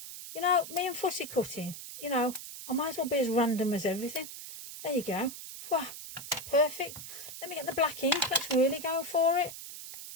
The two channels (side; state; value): right; noise; hiss, 11 dB below the sound